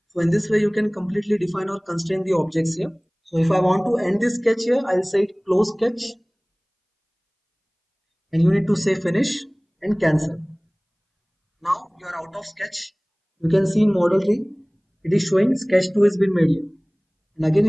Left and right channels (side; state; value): both; identical; correlation 1.00